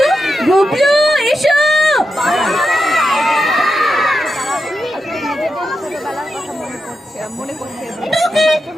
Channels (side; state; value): both; normal; correlation 0.87